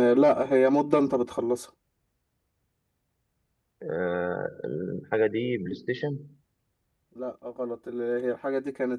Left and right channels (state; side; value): identical; both; correlation 1.00